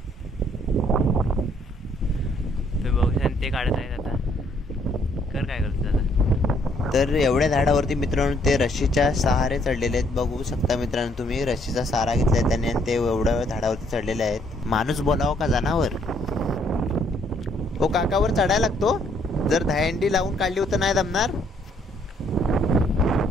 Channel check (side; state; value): both; normal; correlation 0.67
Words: तुम्ही बघू शकता ते काढत आहेत. आता कर काय करतो आता. तर एवढ्या झाडावरती मित्रांनो ते रस्सीच्या सहारे चढलेले आहेत. बघू शकता मित्रांनो तुम्ही, रस्सीचा सहारा घेतलाय त्याने आणि ते एवढ्या झाडावरती चढलेले आहेत. माणूस बोलावं का जनावर. ओ काकावर चढायला लागतो. जर दहीहंडी लावून काढली होतं नाही जमणार.